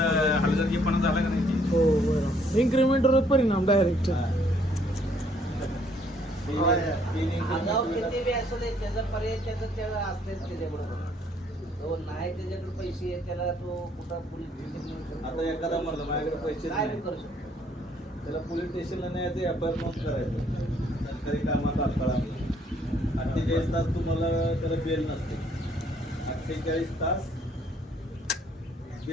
हलगर्जीपणा झाला का नाही? हो बरोबर इन्क्रीमेंटवर परिणाम डायरेक्ट आगाव किती बी असू दे त्याचा पर्याय त्याला असतेच त्याच्याबरोबर. तो नाही त्याच्याकडे पैसे आहेत त्याला तो कुठं पोलीस स्टेशन आता एखादा म्हणलं माझ्याकडे पैसे काय नाही, बी करू शकतो. त्याला पोलीस स्टेशनला न्यायचं, एफआयआर नोंद करायचं. सरकारी कामात अडथळा 48 तास तुम्हाला त्याला बेल नसते. 48 तास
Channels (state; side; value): normal; both; correlation 0.66